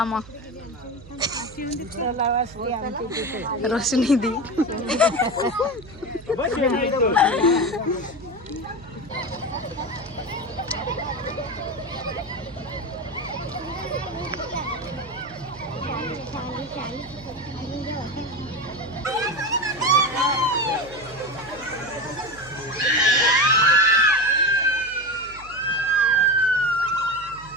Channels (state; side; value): noise; right; hum, 19 dB below the sound